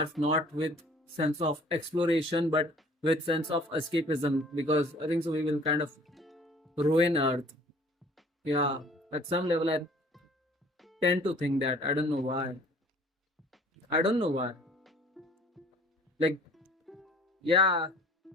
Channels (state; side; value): normal; both; correlation 0.52